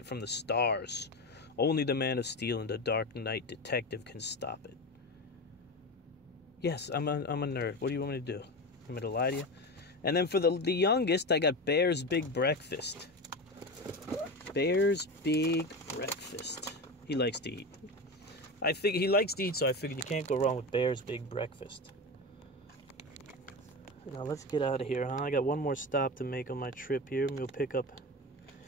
from the stars. Only the Man of Steel and the Dark Knight detective can stop it. Yes, I'm a nerd. What do you want me to do? You want me to lie to you? And then for the youngest, I got Bear's Big Breakfast. Bear's Big Breakfast. He likes to eat. I figure he likes to eat, so I figured you can't go wrong with Bear's Big Breakfast. Now let's get out of here, huh? I got one more stop to make on my trip here. I'm gonna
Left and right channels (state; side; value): normal; both; correlation 0.23